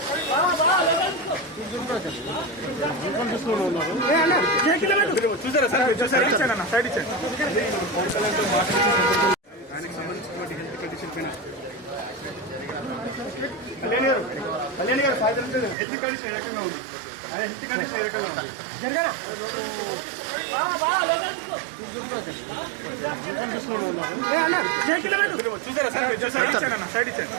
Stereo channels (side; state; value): left; drops out; at 15.8 s